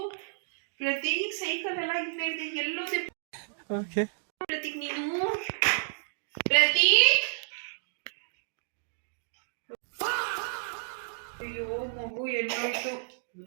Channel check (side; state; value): left; silent; digital silence